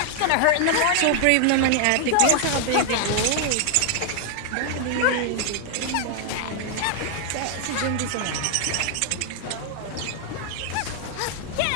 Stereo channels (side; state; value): both; different; correlation 0.00